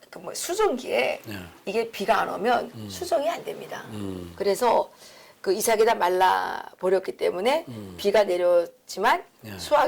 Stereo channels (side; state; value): both; identical; correlation 1.00